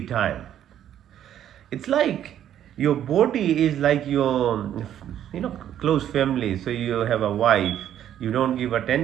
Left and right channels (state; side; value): quieter; left; 10.7 dB